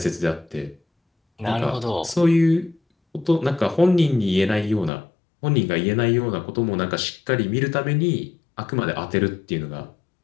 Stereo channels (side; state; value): right; drops out; at 4.9 s